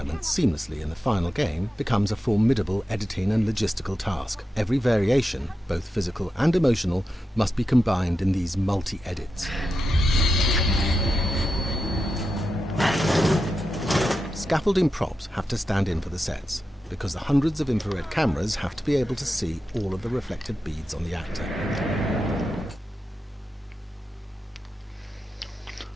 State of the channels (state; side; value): normal; both; correlation 0.89